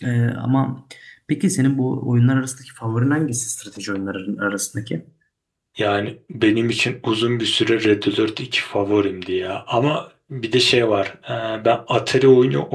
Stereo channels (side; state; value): both; identical; correlation 1.00